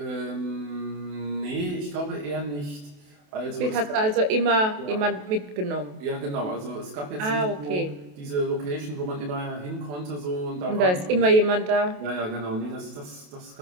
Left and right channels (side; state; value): left; late; 28 ms